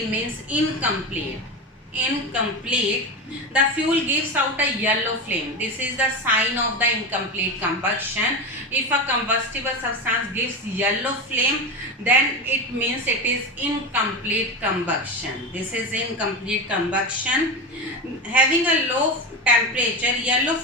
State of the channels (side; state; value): both; normal; correlation 0.20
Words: incomplete. The fuel gives out a yellow flame. This is the sign of the incomplete combustion. If a combustible substance gives yellow flame, then it means it is incomplete combustion. This is incomplete combustion. Having a low temperature, yellow